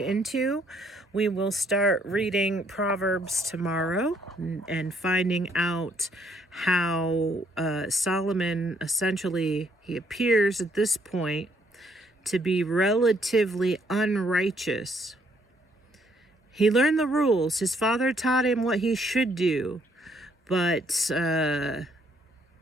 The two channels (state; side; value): normal; both; correlation 0.68